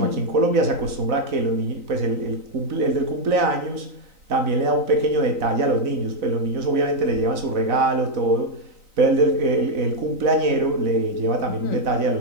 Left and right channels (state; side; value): late; left; 4.0 ms